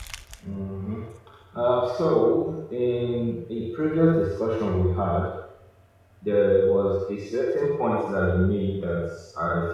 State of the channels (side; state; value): both; identical; correlation 1.00